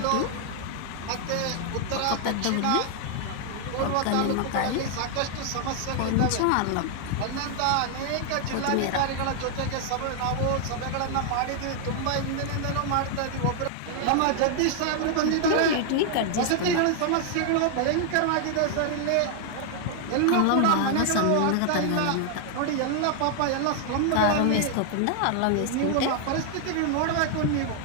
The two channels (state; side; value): different; both; correlation 0.00